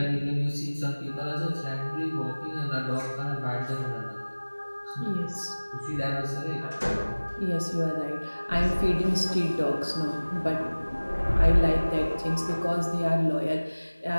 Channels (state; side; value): inverted; both; correlation -1.00